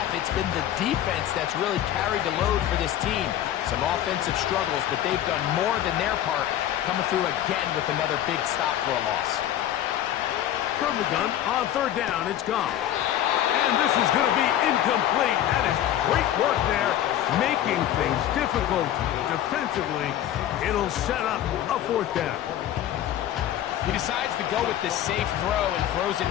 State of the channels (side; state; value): right; quieter; 11.8 dB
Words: it's been the defense that's really carried the load for this team. Some offensive struggles, but they've done more than their part, coming through again with another big stop for a loss. From the gun, on 3rd down, it's gone. And this is going to be incomplete. That is great work there, making things difficult defensively. It'll set up a 4th down. He decides to go with this safe throw and throws it